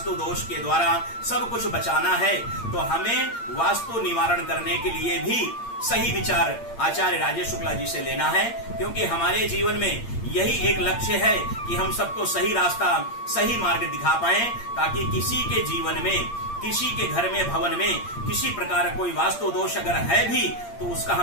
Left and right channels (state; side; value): late; right; 8.7 ms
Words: दोष के द्वारा सब कुछ बचाना है तो हमें वास्तु निवारण करने के लिए भी सही विचार आचार्य राजेश शुक्ला जी से लेना है। क्योंकि हमारे जीवन में यही एक लक्ष्य है कि हम सबको सही रास्ता, सही मार्ग दिखा पाए, ताकि किसी के जीवन में, किसी के घर में, भवन में किसी प्रकार कोई वास्तु दोष अगर है भी तो उसका